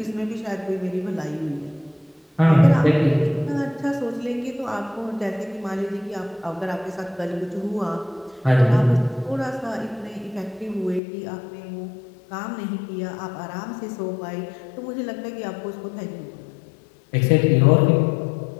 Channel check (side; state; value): right; drops out; at 11.0 s